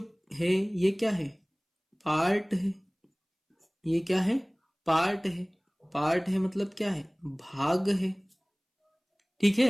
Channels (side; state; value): both; identical; correlation 1.00